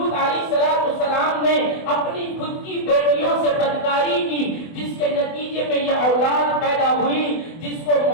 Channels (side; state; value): right; late; 24 ms